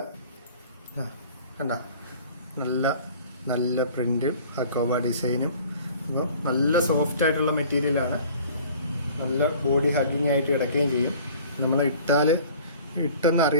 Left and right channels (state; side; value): inverted; both; correlation -0.48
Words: കണ്ടോ, നല്ല നല്ല പ്രിൻറ്റും ഹക്കോബ ഡിസൈനും. അപ്പോൾ നല്ല സോഫ്റ്റ് ആയിട്ടുള്ള മെറ്റീരിയലാണ്, നല്ല ബോഡി ഹഗ്ഗിങ് ആയിട്ട് കിടക്കുകയും ചെയ്യും. നമ്മൾ ഇട്ടെന്ന്